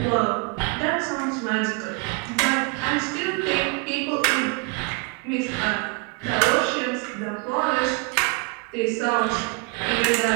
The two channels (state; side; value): quieter; left; 30.9 dB